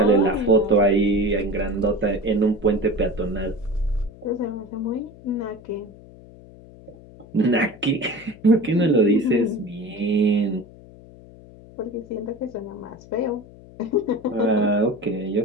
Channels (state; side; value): noise; left; hum, 21 dB below the sound